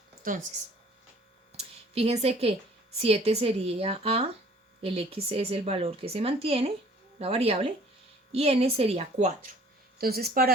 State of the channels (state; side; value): normal; both; correlation 0.54